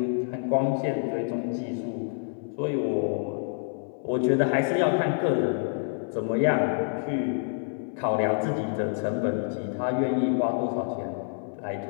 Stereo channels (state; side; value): silent; right; 60 dB below the other